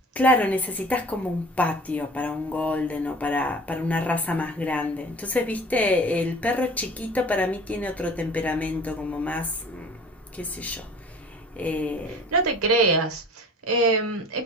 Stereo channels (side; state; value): both; normal; correlation 0.45